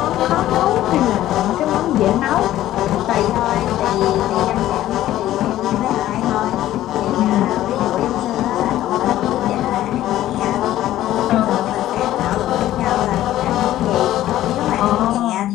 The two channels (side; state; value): right; quieter; 13.8 dB